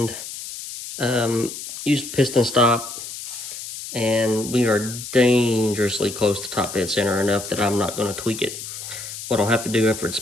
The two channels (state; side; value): noise; left; hiss, 10 dB below the sound